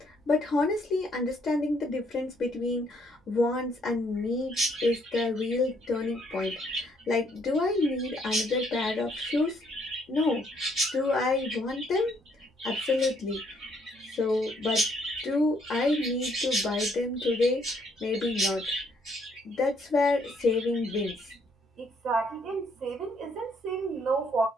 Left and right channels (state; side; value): normal; both; correlation 0.69